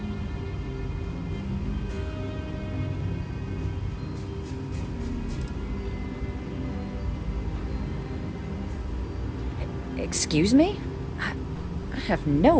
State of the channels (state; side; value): identical; both; correlation 1.00